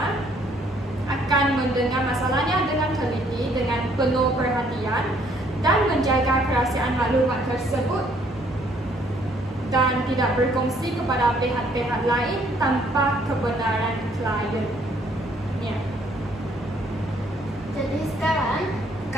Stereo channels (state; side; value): normal; both; correlation 0.65